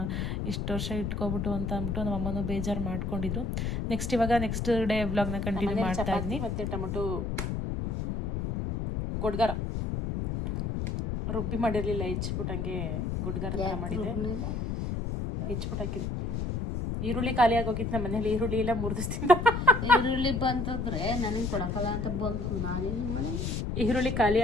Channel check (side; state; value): left; noise; rumble, 2 dB below the sound